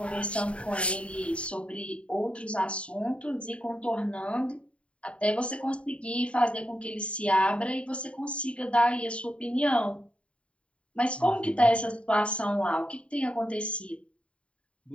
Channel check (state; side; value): late; right; 0.060 ms